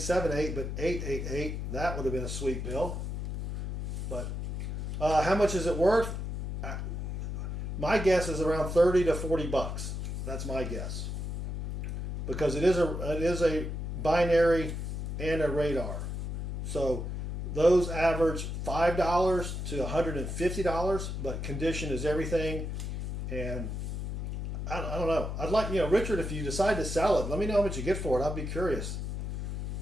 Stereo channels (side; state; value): left; noise; hum, 4 dB below the sound